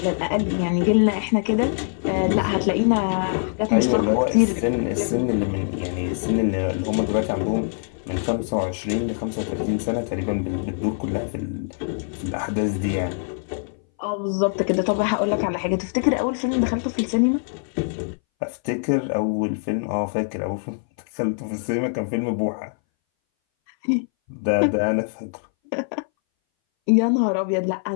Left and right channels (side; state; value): right; silent; 61 dB below the other